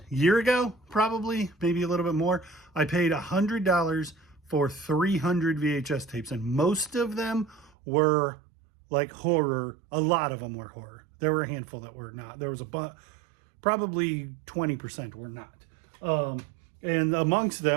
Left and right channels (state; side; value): drops out; left; at 7.7 s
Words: year ago, probably, maybe a little bit more, I paid $100 for 300 VHS tapes, and most of them were like horror. A lot of them were horror. There were a handful that were not. There was probably 20% were not. And amongst